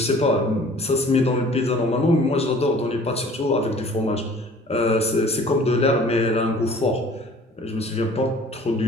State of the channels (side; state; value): both; normal; correlation 0.49